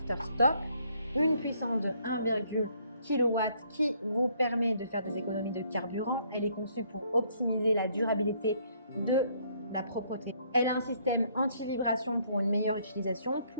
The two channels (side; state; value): both; inverted; correlation -0.66